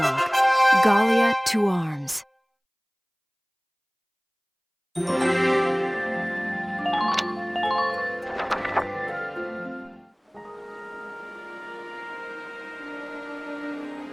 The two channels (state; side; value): identical; both; correlation 1.00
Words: Gallia to arms.